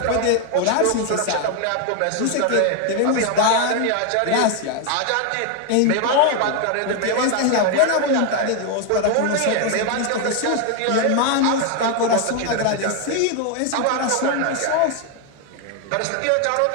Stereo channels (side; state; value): both; different; correlation 0.01